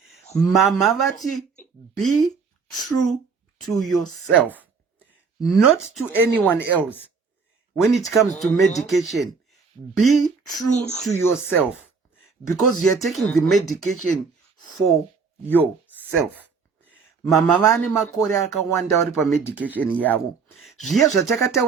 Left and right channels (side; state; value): left; quieter; 5.2 dB